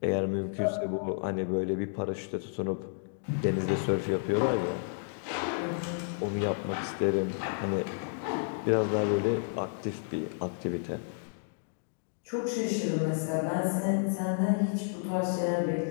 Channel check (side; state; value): right; silent; digital silence